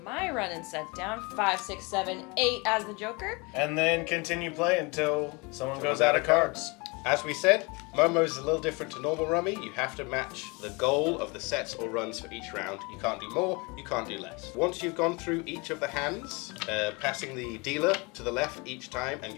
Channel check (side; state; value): right; quieter; 28.2 dB